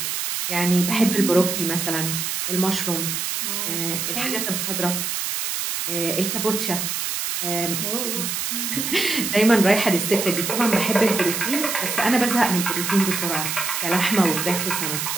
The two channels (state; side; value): noise; right; hiss, 2 dB below the sound